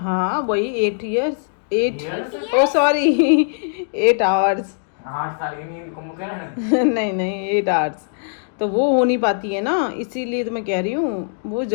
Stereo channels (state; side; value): silent; right; digital silence